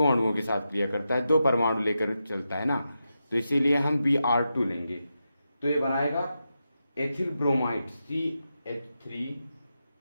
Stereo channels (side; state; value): both; inverted; correlation -0.88